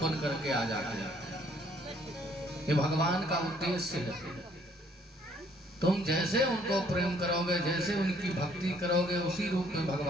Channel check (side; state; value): both; normal; correlation 0.63